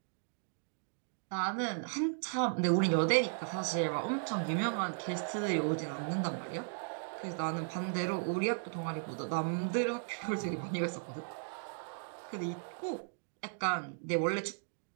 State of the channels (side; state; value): left; silent; digital silence